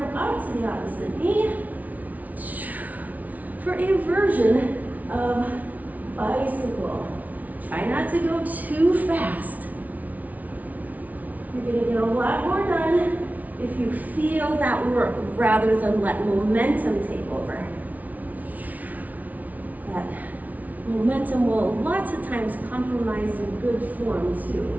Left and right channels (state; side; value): late; left; 0.074 ms